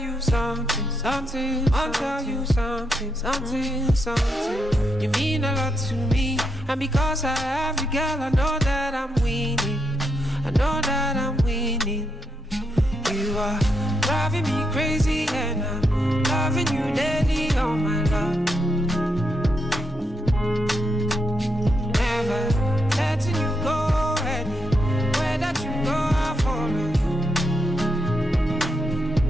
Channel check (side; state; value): both; normal; correlation 0.80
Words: something, something. I want to tell you something, something, something. You mean a lot to me, and because I have you, girl, I know that I'm winning. I know that I'm winning. You are driving me crazy, and I'm loving you daily, oh my love. Never letting you go, anywhere that you go, I'll follow you.